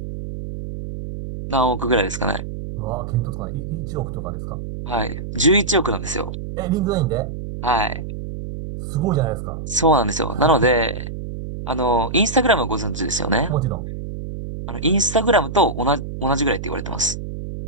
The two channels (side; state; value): right; noise; hum, 7 dB below the sound